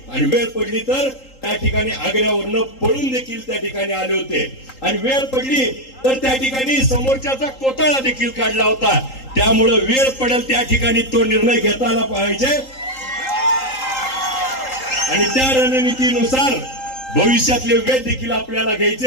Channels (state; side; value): late; right; 3.8 ms